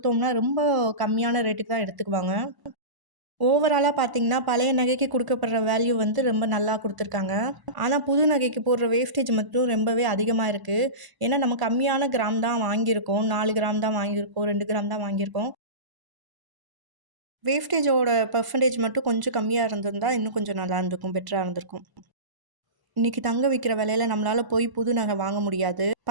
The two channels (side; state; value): left; late; 1.0 ms